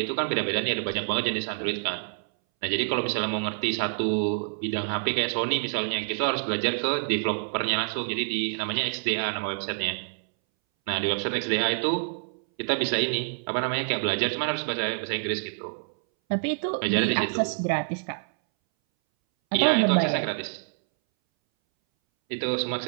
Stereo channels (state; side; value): silent; left; 60 dB below the other